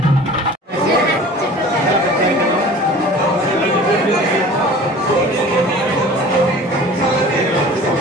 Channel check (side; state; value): both; normal; correlation 0.43